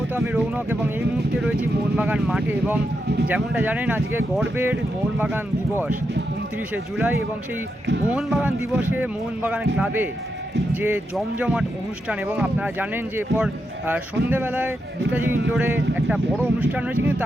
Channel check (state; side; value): normal; both; correlation 0.84